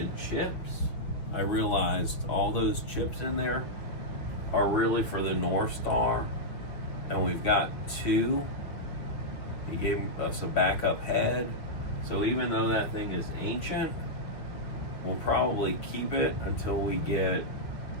chips, I realized all those chips in there are really for the North Star, and we've got two. He gave us a backup head, so even though that thing is ancient, we'll probably keep it until we get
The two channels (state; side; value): late; right; 6.3 ms